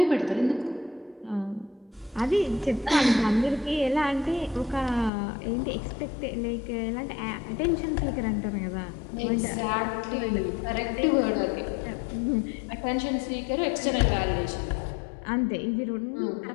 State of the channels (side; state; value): right; drops out; at 5.1 s